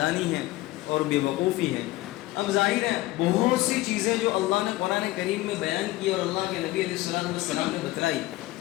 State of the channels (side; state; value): right; quieter; 18.0 dB